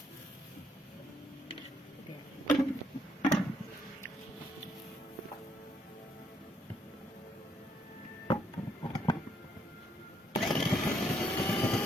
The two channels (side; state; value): both; normal; correlation 0.72